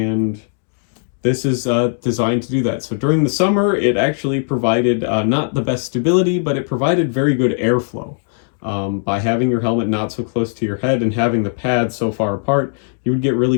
this is designed to do that. So during the summer, it actually provided not the best stability, but it provided very good airflow. By having your helmet not so close to your head and having the pads so far apart, you would get really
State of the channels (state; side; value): silent; right; 66 dB below the other